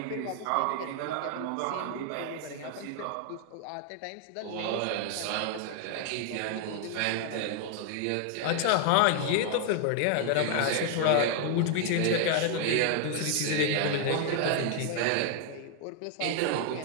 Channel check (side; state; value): both; different; correlation 0.00